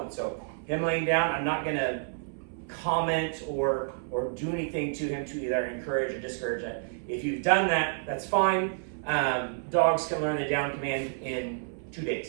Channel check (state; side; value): silent; left; 57 dB below the other